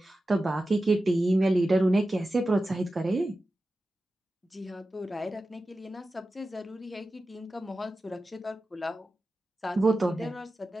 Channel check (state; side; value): normal; both; correlation 0.93